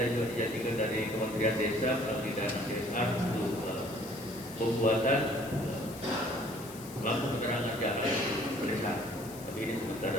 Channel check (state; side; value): noise; left; hiss, 16 dB below the sound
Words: juga dijadikan dari Kementerian Desa melalui dana CSR untuk pembuatan lampu penerangan jalan desa. Tapi ini sebentar